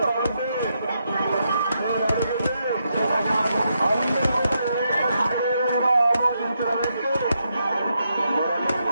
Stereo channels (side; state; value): both; inverted; correlation -0.81